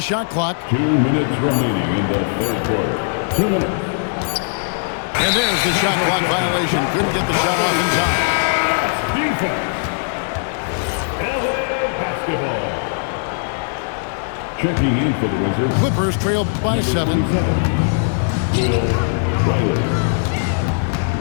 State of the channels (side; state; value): right; silent; digital silence